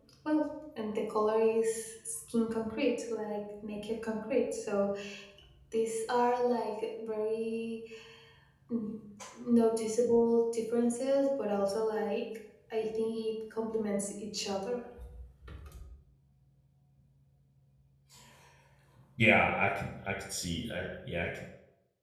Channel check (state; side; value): identical; both; correlation 1.00